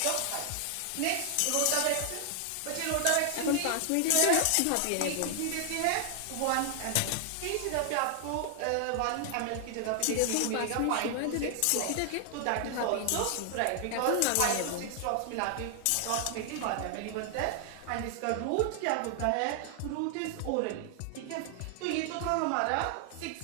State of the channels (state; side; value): different; both; correlation 0.00